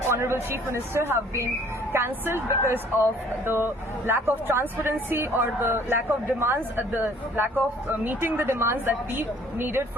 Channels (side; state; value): both; normal; correlation 0.56